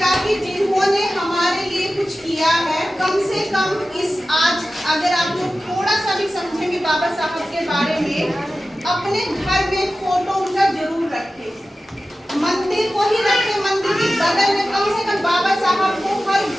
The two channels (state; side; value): normal; both; correlation 0.95